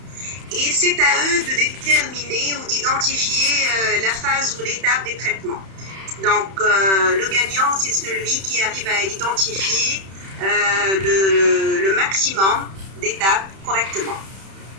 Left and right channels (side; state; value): left; late; 31 ms